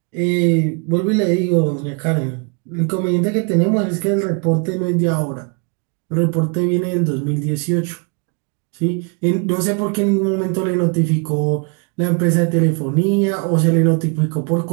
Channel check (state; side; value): quieter; left; 36.1 dB